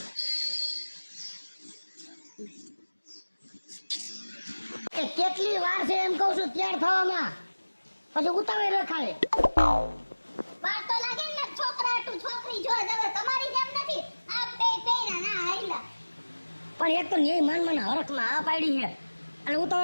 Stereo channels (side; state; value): both; inverted; correlation -1.00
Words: એ કેટલી વાર છે એમ કહું છું તૈયાર થવામાં, પછી ઉતાવળ રખાય. વાર તો લાગે ને છોકરા તું છોકરી જો હવે તમારી જેમ નથી. આ બે પેરા ના હાઈલા. પણ એક તો ન્યાય માન મને હરખમાં આ પાડી છે અને